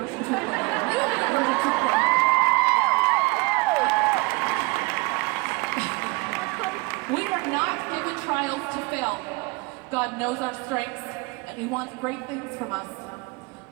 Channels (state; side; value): quieter; left; 26.3 dB